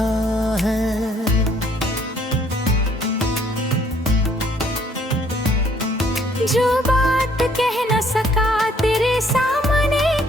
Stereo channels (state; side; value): normal; both; correlation 0.63